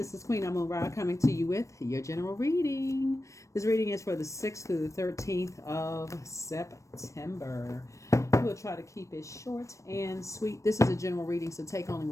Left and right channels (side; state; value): right; late; 0.15 ms